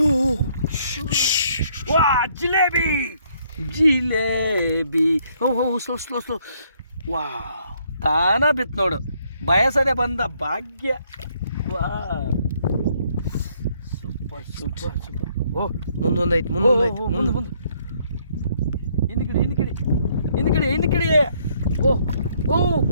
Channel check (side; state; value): both; inverted; correlation -0.68